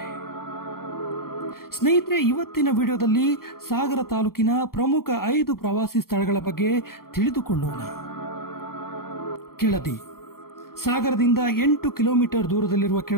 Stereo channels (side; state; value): right; late; 0.93 ms